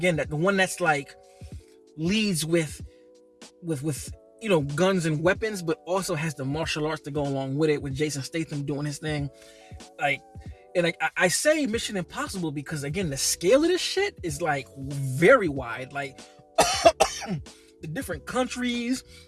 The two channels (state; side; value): identical; both; correlation 1.00